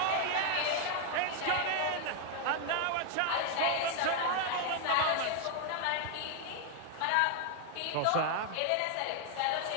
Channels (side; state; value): both; different; correlation 0.00